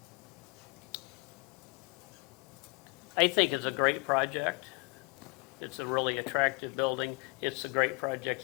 I think it's a great project. It's a really attractive building. It's a great project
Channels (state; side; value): quieter; right; 29.4 dB